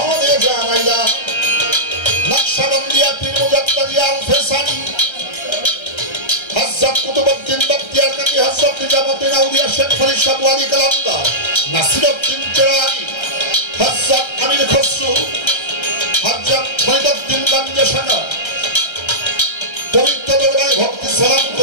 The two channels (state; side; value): late; right; 1.3 ms